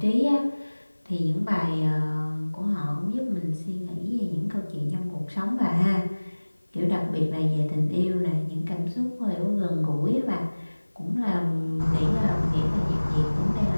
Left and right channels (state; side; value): inverted; both; correlation -1.00